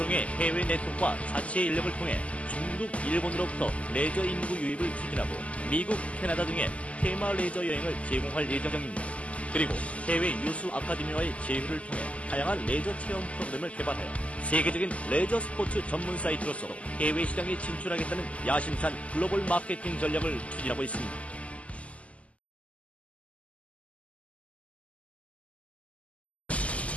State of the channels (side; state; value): right; late; 0.065 ms